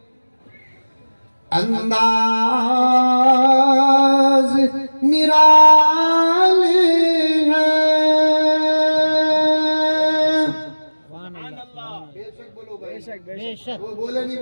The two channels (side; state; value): both; inverted; correlation -1.00